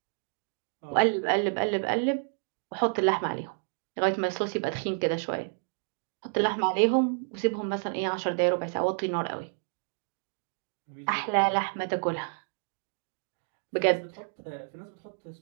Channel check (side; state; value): left; silent; digital silence